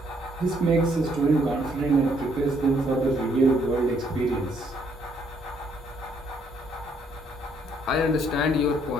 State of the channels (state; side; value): normal; both; correlation 0.69